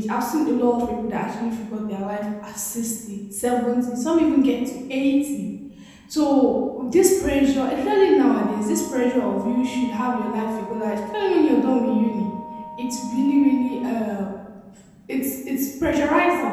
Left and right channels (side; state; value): both; identical; correlation 1.00